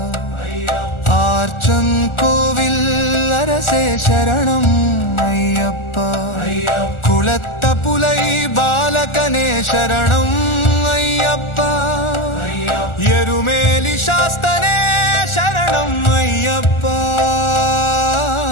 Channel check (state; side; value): late; right; 1.4 ms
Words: ಆರ್ಚನ್ ಕೋವಿಲ್ ಅರಸೇ ಶರಣಂ ಅಯ್ಯಪ್ಪ ಕುಳತ್ತ ಪುಲೈ ಬಾಲಕನೇ ಶರಣಂ ಅಯ್ಯಪ್ಪ ಎರುಮೇಲಿ ಶಾಸ್ತನೇ ಶರಣಂ ಅಯ್ಯಪ್ಪ